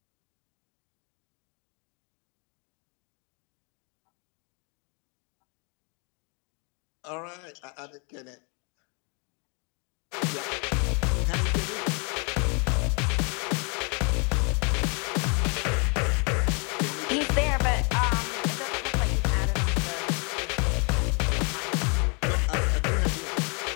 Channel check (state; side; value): quieter; right; 34.2 dB